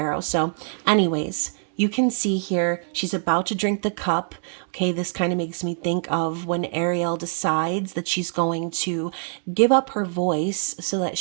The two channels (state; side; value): silent; left; digital silence